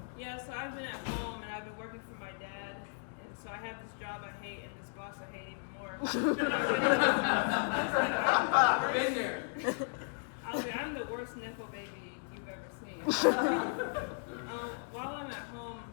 Yeah, so I've been at home and I've been working for my dad, and so I have this job I hate and this boss I hate even more. I was like, I'm the worst nepo baby you've ever seen. While I'm at home,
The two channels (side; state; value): right; silent; digital silence